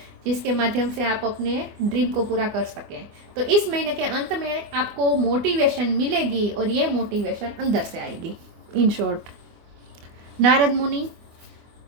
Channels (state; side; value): late; left; 24 ms